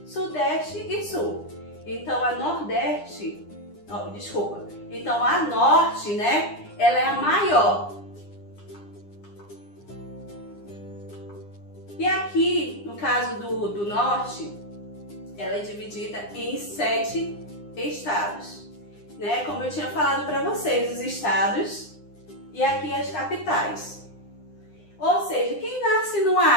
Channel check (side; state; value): right; late; 9.9 ms